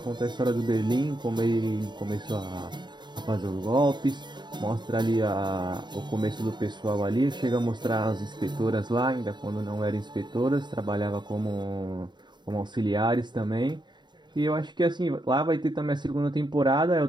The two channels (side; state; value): left; late; 0.21 ms